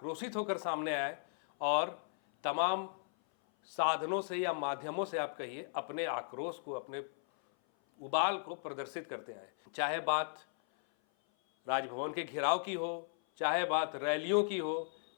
होकर सामने आए और तमाम साधनों से या माध्यमों से आप कहिए अपने आक्रोश को, अपने उबाल को प्रदर्शित करते आए। चाहे बात राजभवन के घेराव की हो, चाहे बात रैलियों की हो,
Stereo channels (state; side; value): silent; right; 54 dB below the other